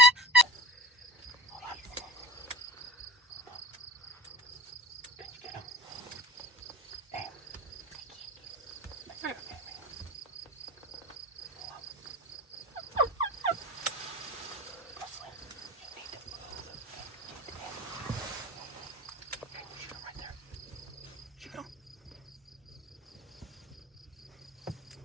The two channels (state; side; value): normal; both; correlation 0.39